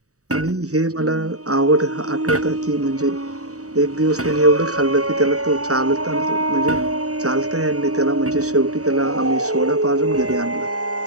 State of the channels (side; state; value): left; late; 0.66 ms